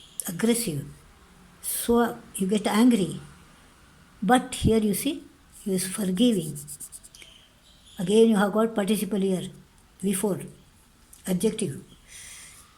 aggressive, so you get angry. But here you see, he is forgiving. Again you have got participle here, before, adjective.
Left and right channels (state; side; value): identical; both; correlation 1.00